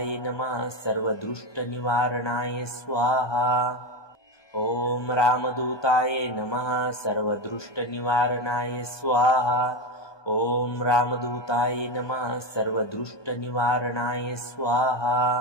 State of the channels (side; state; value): right; late; 1.2 ms